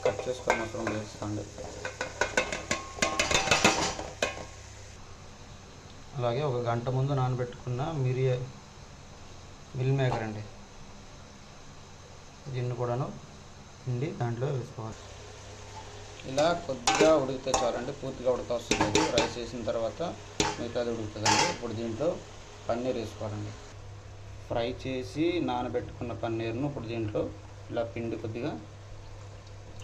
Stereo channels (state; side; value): identical; both; correlation 1.00